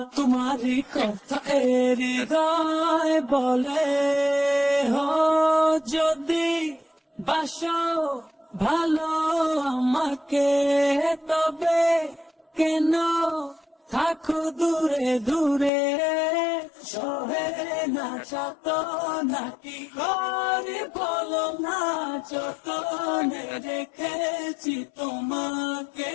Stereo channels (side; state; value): right; drops out; at 15.7 s